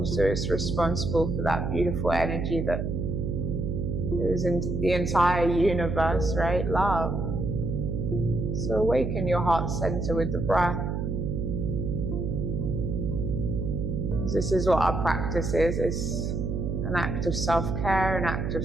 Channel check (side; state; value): right; noise; hum, 1 dB below the sound